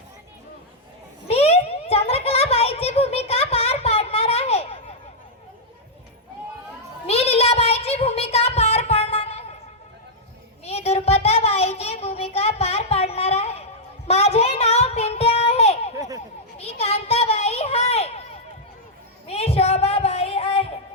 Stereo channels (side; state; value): both; normal; correlation -0.06